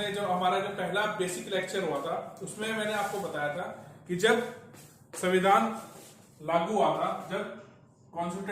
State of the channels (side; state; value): both; identical; correlation 1.00